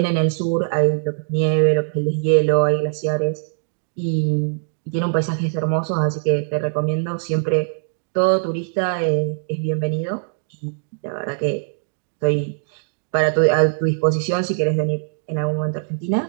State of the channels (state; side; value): silent; left; digital silence